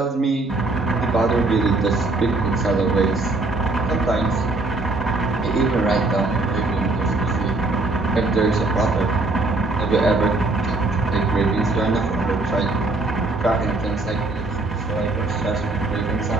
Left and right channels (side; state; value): left; quieter; 3.1 dB